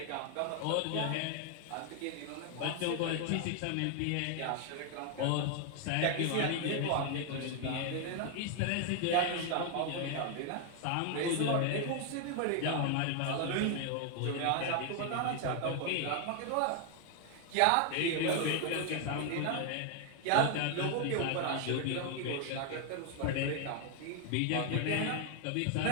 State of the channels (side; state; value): both; different; correlation 0.00